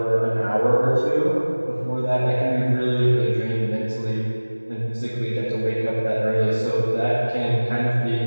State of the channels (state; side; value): inverted; both; correlation -1.00